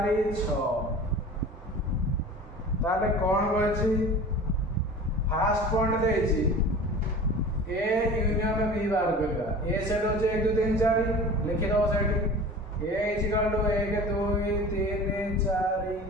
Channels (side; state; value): both; normal; correlation 0.39